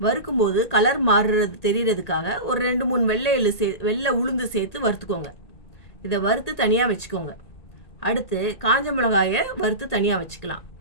வறுக்கும்போது கலர் மாறுறது தெரியறதுக்காக ஒரு 2-3 வெள்ளை உளுந்து சேர்த்து வறுத்துக்கோங்க. இதை வறுத்து தனியாக வச்சுக்கோங்க. அடுத்து காஞ்ச மிளகாயை வறுத்து தனியாக வச்சுக்கலாம்.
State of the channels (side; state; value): right; late; 1.8 ms